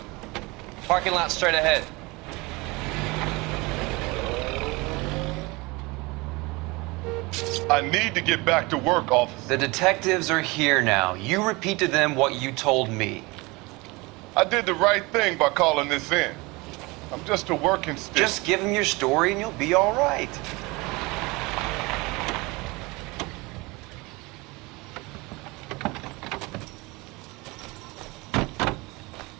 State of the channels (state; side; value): quieter; left; 24.4 dB